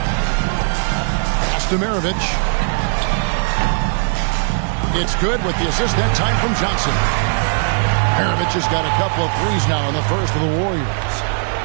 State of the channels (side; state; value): left; silent; 58 dB below the other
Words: Pass to Maravich. It's good with the assist that time from Johnson. Maravich has got a couple of threes now in the first of the Warriors.